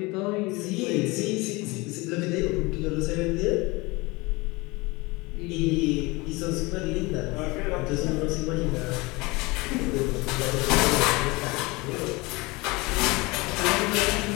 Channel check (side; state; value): right; quieter; 24.0 dB